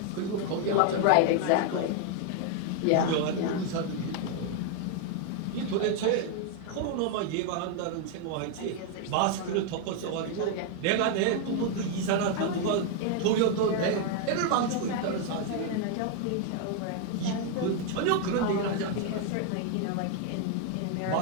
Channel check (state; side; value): different; both; correlation 0.00